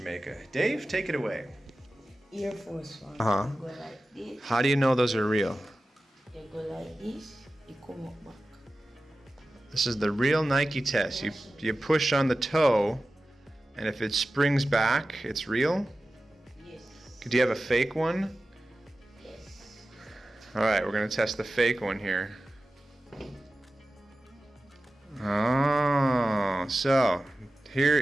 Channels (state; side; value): normal; both; correlation 0.95